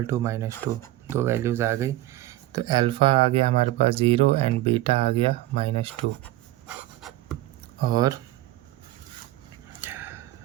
टू -2। दो वैल्यूज़ आ गई। तो अल्फ़ा आ गया हमारे पास 0 एंड बीटा आ गया -2।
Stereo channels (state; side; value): quieter; left; 16.0 dB